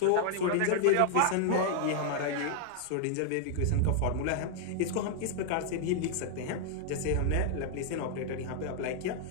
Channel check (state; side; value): different; both; correlation -0.01